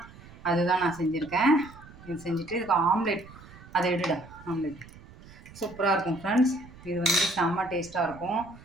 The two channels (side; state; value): right; noise; rumble, 20 dB below the sound